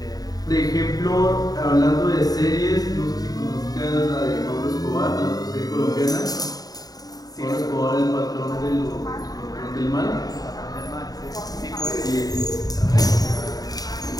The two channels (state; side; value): late; right; 0.18 ms